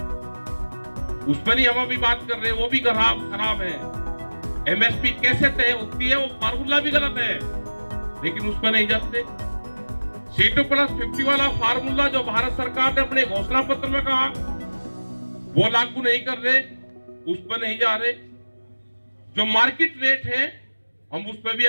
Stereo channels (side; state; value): both; inverted; correlation -1.00